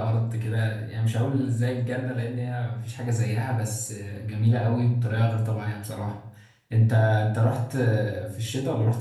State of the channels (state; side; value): identical; both; correlation 1.00